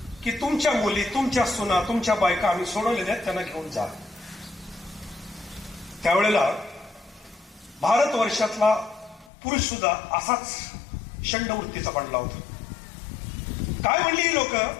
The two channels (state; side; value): drops out; right; at 9.3 s